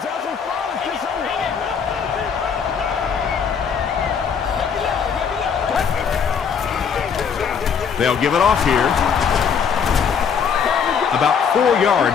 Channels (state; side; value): quieter; right; 6.8 dB